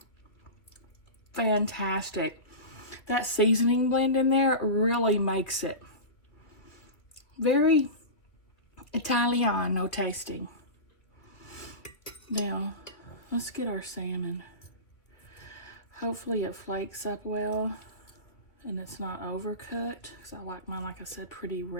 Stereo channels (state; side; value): late; right; 2.4 ms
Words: Fantastic. that seasoning blend in there really makes it very Italiano tasting. Now, let's get our salmon. Hopefully it flakes up well and it's not overcooked, because I like mine, like I said, pretty